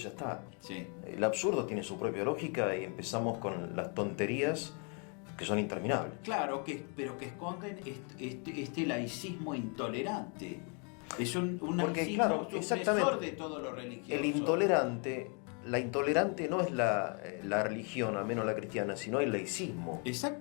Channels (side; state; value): right; quieter; 37.5 dB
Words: ya está. Sí. El absurdo tiene su propia lógica y empezamos con las tonterías que son interminables. Claro, pero que esconden este laicismo intolerante. Es un Porque, laicismo claro, supresor exactamente, de todo lo religioso. La intolerante no es la religión, al menos la cristiana, sino el laicismo.